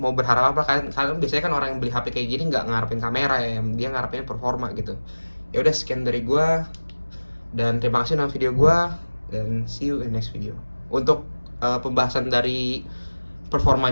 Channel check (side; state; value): both; inverted; correlation -1.00